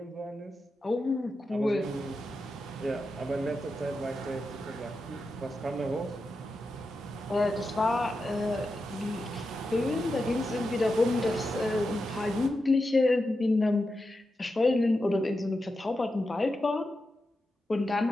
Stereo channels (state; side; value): normal; both; correlation 0.89